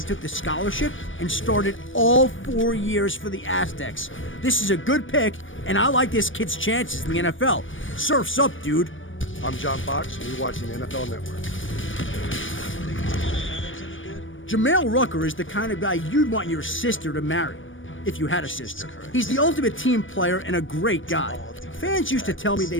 took the scholarship and started all 4 years for the Aztecs. This is a good pick, and I like this kid's chances in the NFL. Surf's up, dude. I'm John Fox, and you're watching NFL Network. Jamel Rucker is the kind of guy you'd want your sister to marry, if you had a sister. He's the ultimate team player and a great guy. Fans used to tell me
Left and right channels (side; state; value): right; late; 0.57 ms